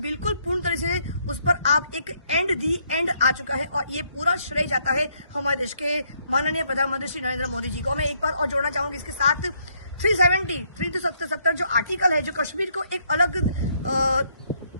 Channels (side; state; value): both; inverted; correlation -0.71